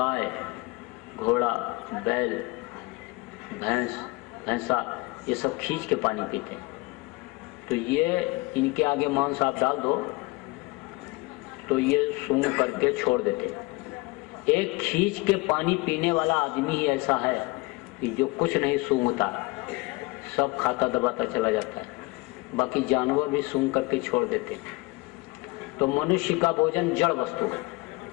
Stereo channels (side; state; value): right; quieter; 24.2 dB